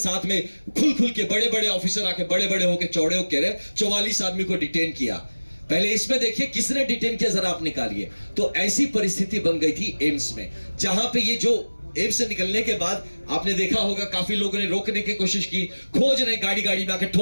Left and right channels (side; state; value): both; inverted; correlation -1.00